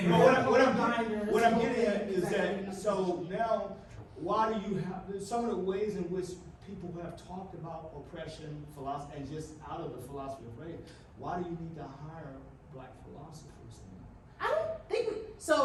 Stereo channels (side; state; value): both; identical; correlation 1.00